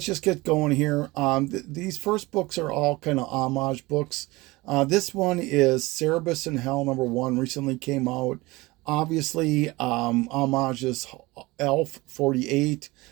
just get going here. These first books are all kind of homage books. This one is Cerebus in Hell #1, recently came out. Obviously, Homage is Elf 48.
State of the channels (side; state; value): left; quieter; 21.6 dB